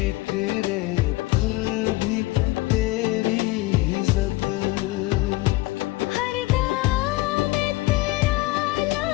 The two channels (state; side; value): quieter; right; 20.2 dB